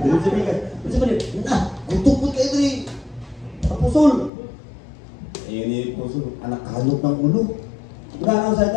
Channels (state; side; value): drops out; right; at 4.3 s